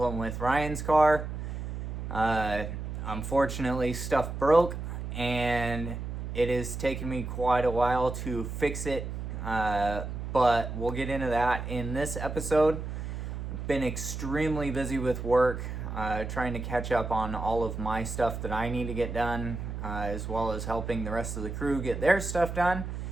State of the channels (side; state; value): right; noise; hum, 6 dB below the sound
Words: with Ryan's car. Unfortunately, stuff broke, and it has taken me quite a while to fix it. But we'll get into that in this episode. Been extremely busy with work, trying to catch up on all of my stuff that I need to get done, as well as helping the rest of the crew get their stuff done.